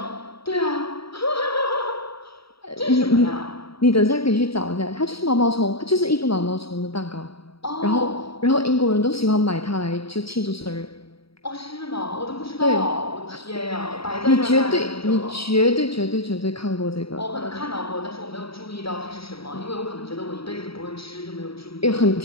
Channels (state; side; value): late; right; 0.75 ms